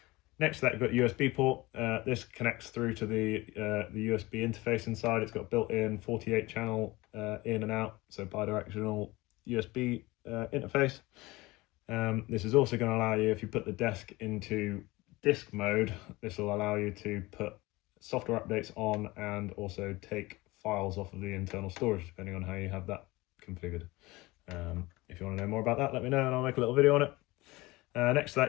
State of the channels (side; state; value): right; quieter; 21.1 dB